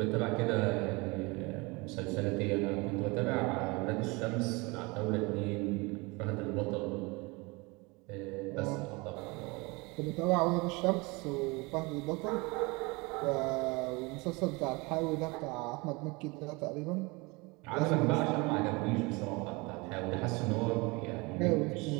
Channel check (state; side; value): quieter; left; 26.1 dB